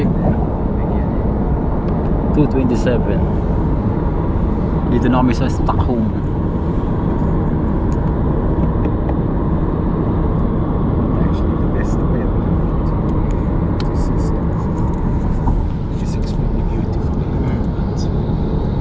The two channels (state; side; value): identical; both; correlation 1.00